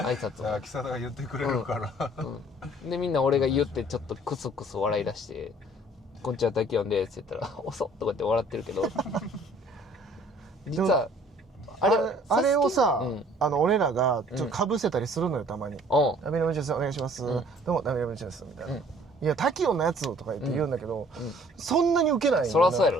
拶も。秋貞が言ってくれるから。で、みんな俺が言ってちょっとクスクス笑い出して、こんにちは、タキオンですって言ったら、おそっとかって笑ってるけど、実は、あれをさ、俺らがちょっと被せたりするのよ、たまに。ダメのムチです、お願いします。どうも、ダメのムチです、みたいな。いや、タキオンのやつとか言うんだけど、そんなにウケない。そらそうや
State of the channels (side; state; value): both; normal; correlation 0.55